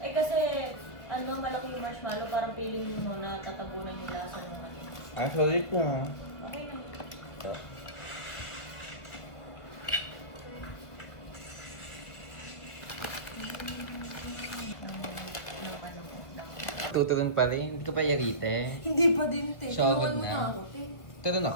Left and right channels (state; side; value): late; right; 1.6 ms